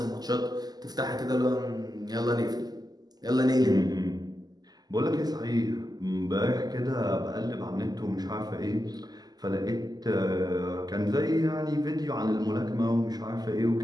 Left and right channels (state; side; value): late; left; 0.19 ms